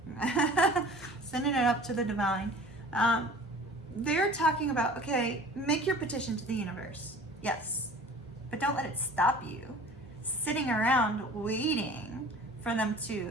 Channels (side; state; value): right; noise; hum, 25 dB below the sound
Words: Sending it up to the divine. They're talking about, okay, make your petition to the universe. Yes, but don't let it stop you sitting around waiting for them